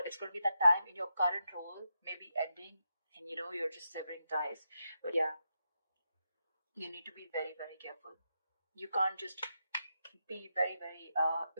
it's going to be that time in your current role maybe ending, and you're just severing ties. But yeah, you need to be very, very careful. You can't just be very, very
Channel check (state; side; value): inverted; both; correlation -0.86